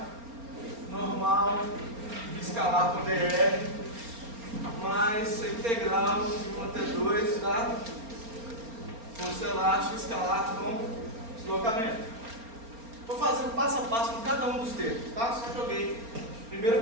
normal escalar com dr mais integral de 1 até 2 da força elástica escalar com deslocamento. Vou fazendo passo a passo com cada um dos termos, tá? Só joguei.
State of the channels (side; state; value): left; late; 4.4 ms